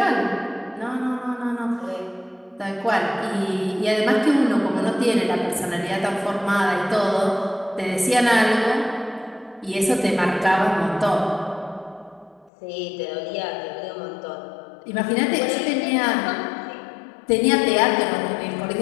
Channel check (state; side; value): drops out; right; at 12.5 s